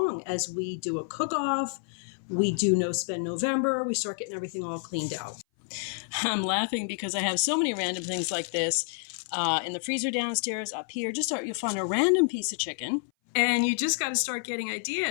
as we do a cook-off. We do No Spend November. We start getting everything all cleaned out. I'm laughing because I have so many random things like this in the freezer downstairs, up here. You'll find a random piece of chicken. And you just got to start getting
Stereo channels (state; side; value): silent; right; 57 dB below the other